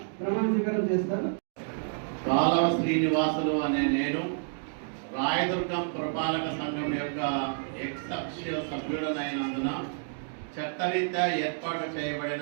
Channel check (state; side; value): silent; left; digital silence